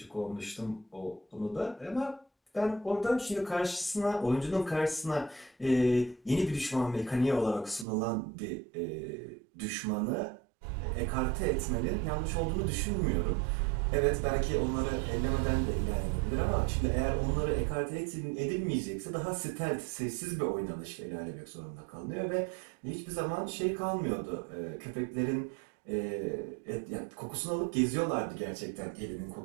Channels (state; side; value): drops out; left; at 7.9 s